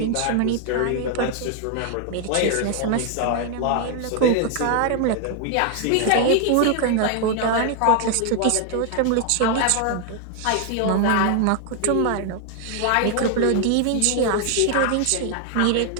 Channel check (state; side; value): different; both; correlation 0.00